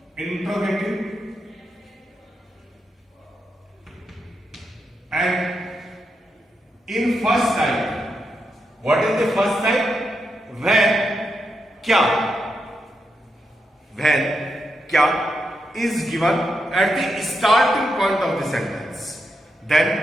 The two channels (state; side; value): normal; both; correlation 0.85